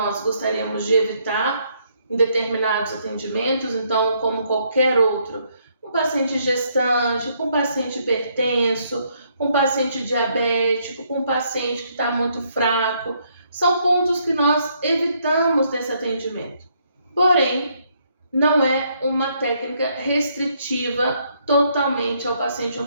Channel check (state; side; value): inverted; both; correlation -0.71